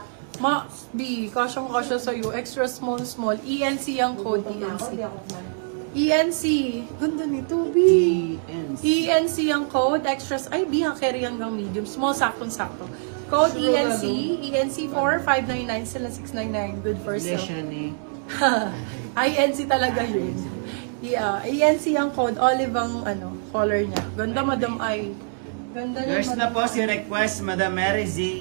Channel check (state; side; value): silent; left; 62 dB below the other